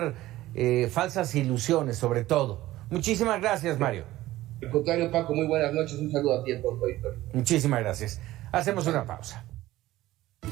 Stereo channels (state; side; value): quieter; left; 16.2 dB